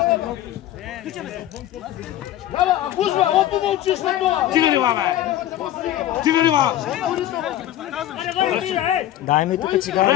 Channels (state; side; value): quieter; right; 12.9 dB